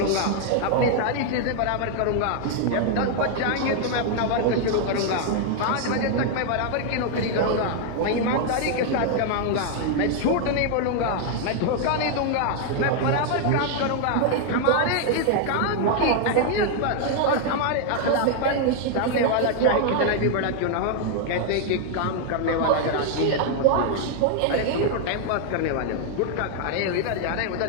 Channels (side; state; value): both; different; correlation 0.00